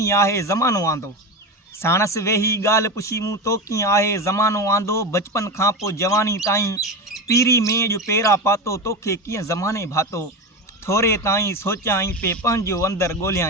आहे ज़मानो आंदो। साणस वेही ॻाल्हि पुछी मूं तो कीअं आहे ज़मानो आंदो। बचपन खां पोइ जवानी ताईं पीरी में जो पेरा पातो तोखे कीअं ज़माने भातो। थोरे ताईं सोचियाईं पे पंहिंजो अंदरि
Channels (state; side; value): normal; both; correlation 0.21